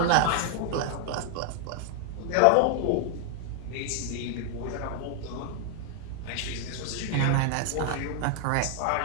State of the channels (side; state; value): both; different; correlation 0.00